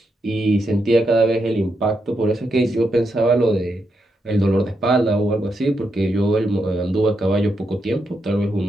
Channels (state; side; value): normal; both; correlation 0.83